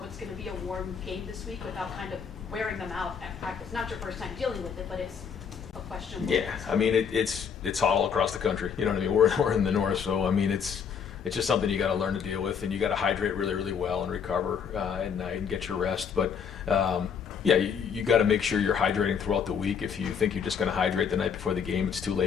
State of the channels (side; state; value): right; quieter; 6.9 dB